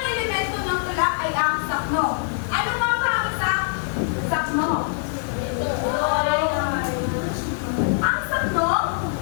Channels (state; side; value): silent; right; digital silence